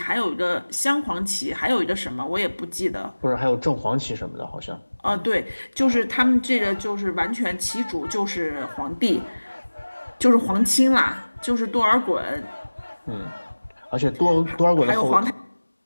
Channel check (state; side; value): inverted; both; correlation -1.00